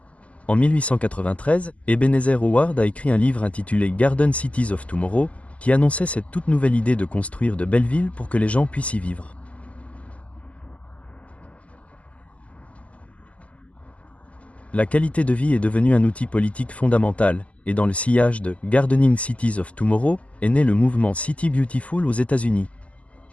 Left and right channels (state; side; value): late; right; 0.064 ms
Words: En 1893, Ebenezer Howard a écrit un livre intitulé Garden Cities of Tomorrow, qui annonçait cette toute nouvelle idée de construire de belles villes pour que les gens puissent y vivre. La qualité de vie est devenue un outil politique fondamental, et dans le sillage de « Gardening Cities of Tomorrow » est né le mouvement City Beautiful aux États-Unis.